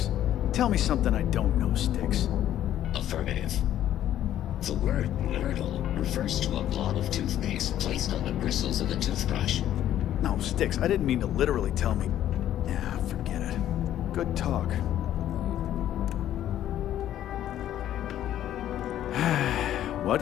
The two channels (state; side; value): quieter; right; 11.8 dB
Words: Tell me something I don't know, Styx. Affirmative. The word Nurdle refers to a blob of toothpaste placed on the bristles of a toothbrush. No, Styx, I didn't mean to literally tell me. Yeah, forget it. Good talk.